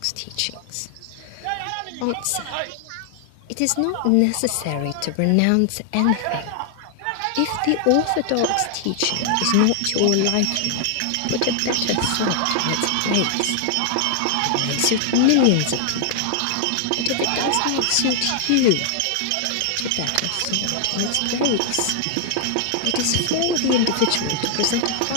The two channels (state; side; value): different; both; correlation 0.00